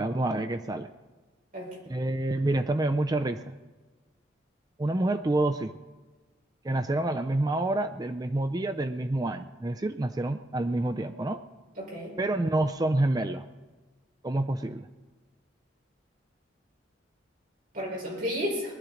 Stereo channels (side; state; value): both; normal; correlation 0.78